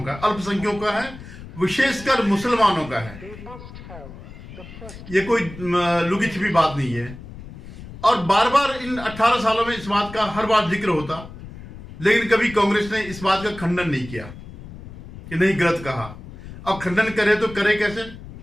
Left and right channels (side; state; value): left; noise; rumble, 15 dB below the sound